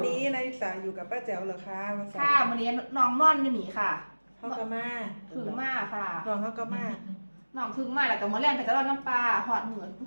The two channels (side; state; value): both; inverted; correlation -1.00